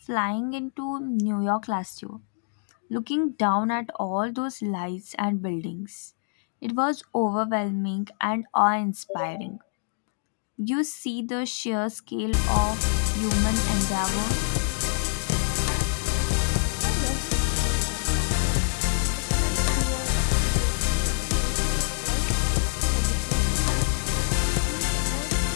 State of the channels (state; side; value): silent; right; digital silence